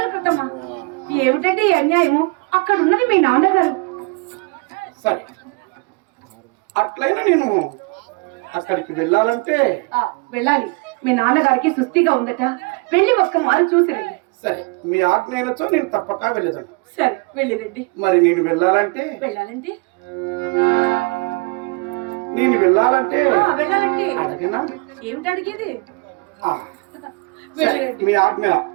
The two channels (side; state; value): left; quieter; 29.5 dB